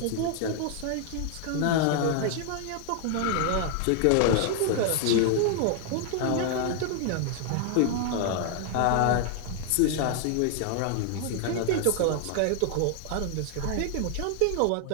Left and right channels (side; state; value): both; different; correlation 0.00